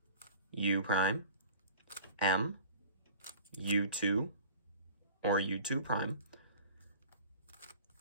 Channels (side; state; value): both; inverted; correlation -0.43